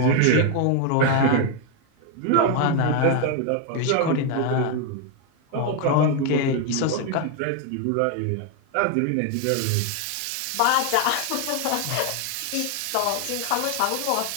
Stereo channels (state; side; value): different; both; correlation 0.01